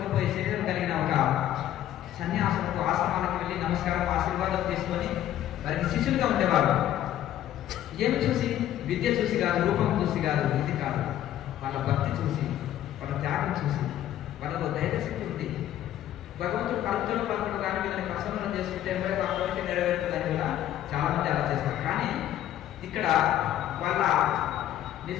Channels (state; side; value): quieter; right; 12.2 dB